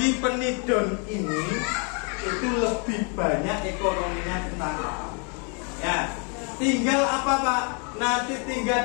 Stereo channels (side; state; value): right; quieter; 37.8 dB